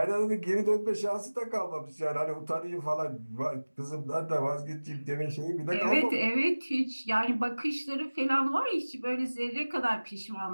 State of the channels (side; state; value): both; inverted; correlation -1.00